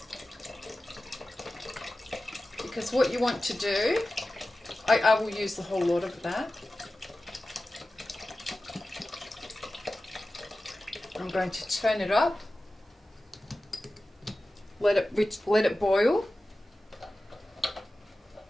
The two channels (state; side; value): normal; both; correlation 0.95